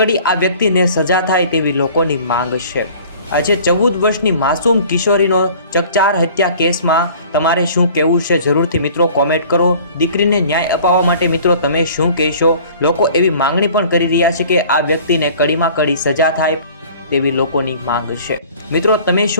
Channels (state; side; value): inverted; both; correlation -0.48